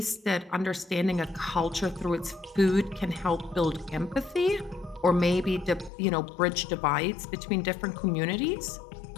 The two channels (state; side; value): drops out; right; at 5.9 s